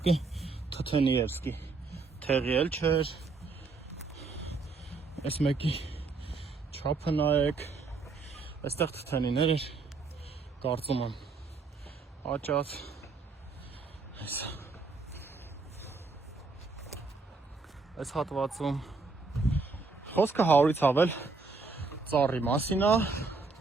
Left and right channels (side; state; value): left; quieter; 4.1 dB